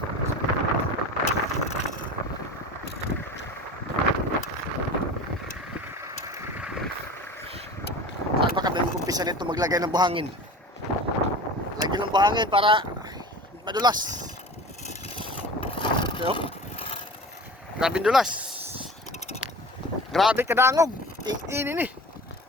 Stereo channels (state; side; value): normal; both; correlation 0.37